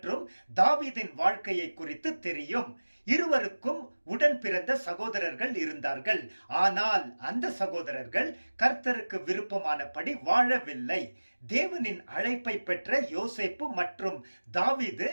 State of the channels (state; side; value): inverted; both; correlation -1.00